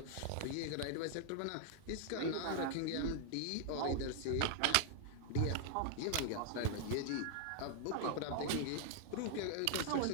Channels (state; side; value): different; both; correlation -0.01